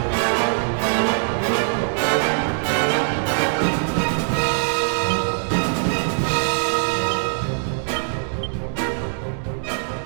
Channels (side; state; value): left; silent; digital silence